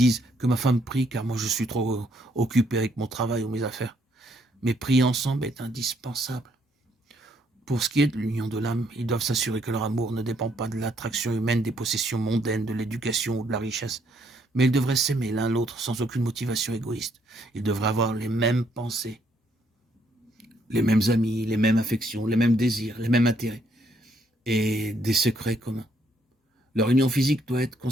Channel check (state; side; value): normal; both; correlation 0.70